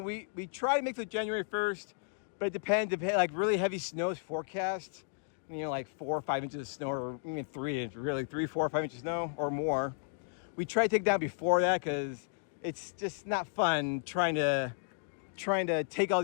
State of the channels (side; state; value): right; silent; digital silence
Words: We try to make it January 1st, but it depends. Like really heavy snow is forecast. Like 4 or 5 inches of snow, or even 3 inches, really 3, 4, or 5 inches of snow or more. We try to take it down before that because it's just not fun trying to take all